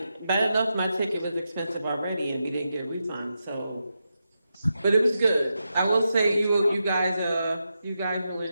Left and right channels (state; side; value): inverted; both; correlation -0.87